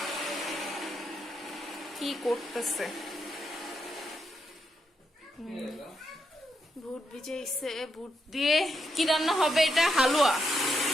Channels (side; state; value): both; normal; correlation 0.82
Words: কি করতেছে? বুট ভিজাইছে। বুট দিয়ে কি রান্না হবে? এটা হালুয়া।